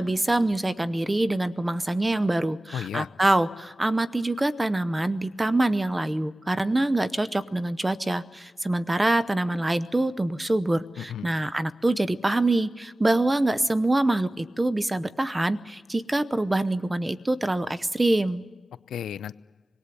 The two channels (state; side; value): normal; both; correlation 0.97